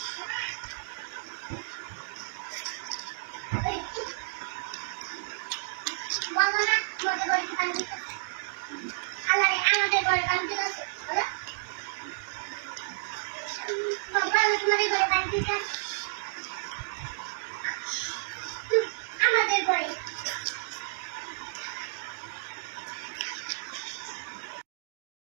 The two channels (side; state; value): left; silent; digital silence